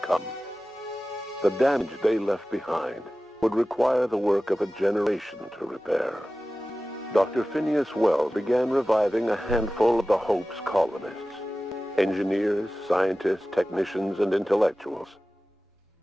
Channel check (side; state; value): both; normal; correlation 0.96